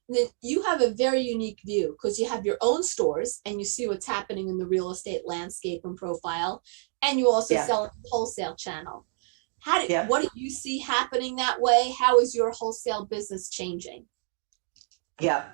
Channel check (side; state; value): left; silent; 58 dB below the other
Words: Then you have a very unique view because you have your own stores and you see what's happening in the real estate landscape and profile, and you also sell a wholesale channel. What do you see happening that way? How is your wholesale business changing? Yeah.